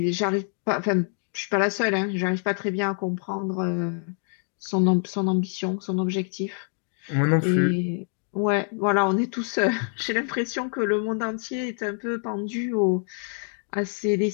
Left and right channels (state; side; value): silent; right; 56 dB below the other